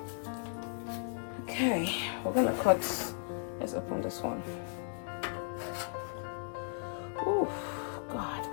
Okay, we're gonna cut. Let's open this one. Oh God,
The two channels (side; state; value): right; silent; 54 dB below the other